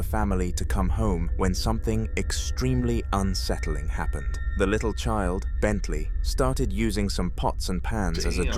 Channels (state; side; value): identical; both; correlation 1.00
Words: family to come home when something extremely unsettling happened. The little child, Bentley, started using some pots and pans as a